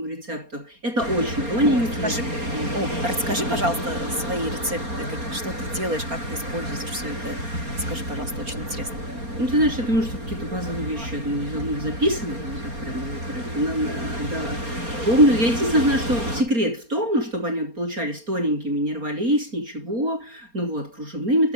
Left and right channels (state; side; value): late; left; 4.3 ms